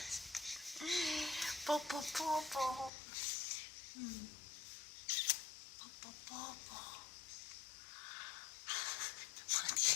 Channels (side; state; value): right; drops out; at 2.9 s